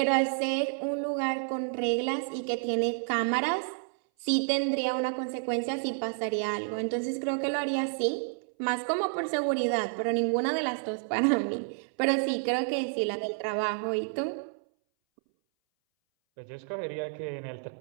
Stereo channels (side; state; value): left; silent; 58 dB below the other